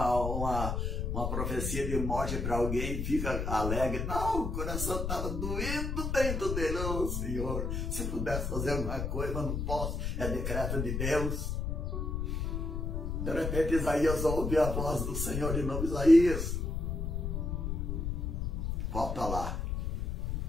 profecia de morte para alguém e fica alegre? Não, o coração estava doendo dentro dele. Oh, Senhor, se pudesse fazer alguma coisa, mas não posso, é decreto de Deus. De repente Isaías ouve a voz do Senhor de novo: Isaías, volta lá.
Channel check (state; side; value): noise; left; rumble, 2 dB below the sound